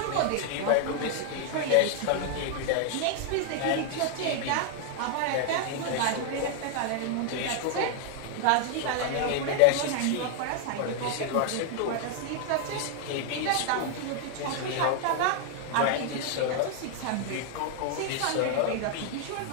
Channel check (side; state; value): both; different; correlation 0.00